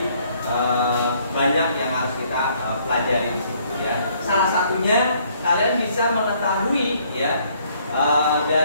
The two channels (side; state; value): both; inverted; correlation -0.65